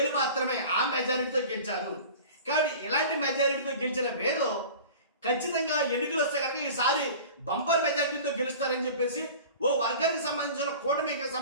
మాత్రమే ఆ మెజారిటీతో గెలిచారు. కాబట్టి ఇలాంటి మెజారిటీతో గెలిచిన వేలు ఖచ్చితంగా ఎన్నికలు వస్తే కనుక ఈసారి బంపర్ మెజారిటీతో గెలుస్తారని చెప్పేసి ఓ వర్గానికి సంబంధించిన కూటమికి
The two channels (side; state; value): both; inverted; correlation -0.40